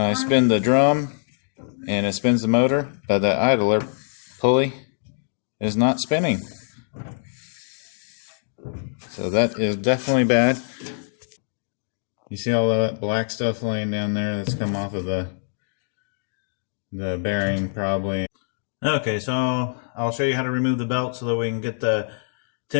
spin the drum and it spins the motor, but the idler pulley is not spinning. So that is definitely bad. You see all that black stuff laying down there that's come off of the bearing probably. Okay, so I'll show you how to remove the belt so that we can get the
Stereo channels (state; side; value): silent; right; digital silence